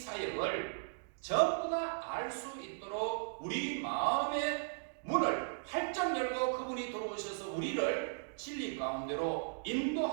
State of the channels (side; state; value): left; silent; digital silence